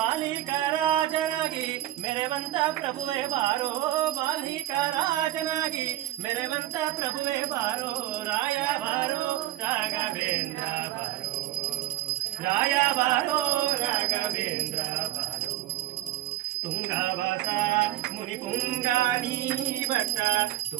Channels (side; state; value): left; quieter; 14.1 dB